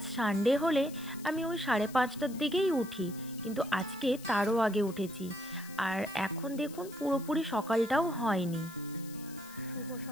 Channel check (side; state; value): left; noise; hiss, 18 dB below the sound